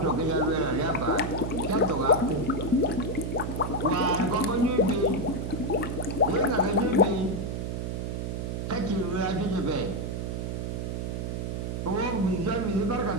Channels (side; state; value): right; noise; hum, 3 dB below the sound